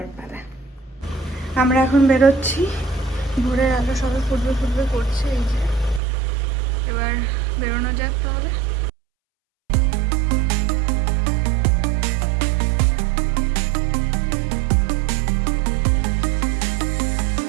পালা। আমরা এখন বেরোচ্ছি, ভোরের আলো সবাই ফুটবে ফুটবে করছে। এই যে এবার বেরোনো যাক তাহলে।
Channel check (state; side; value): drops out; left; at 6.0 s